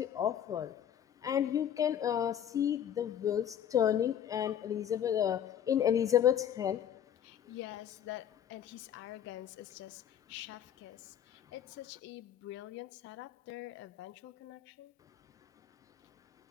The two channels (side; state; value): right; quieter; 9.7 dB